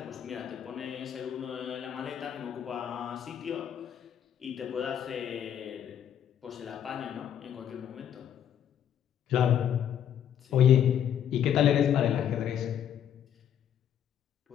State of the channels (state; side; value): quieter; right; 9.5 dB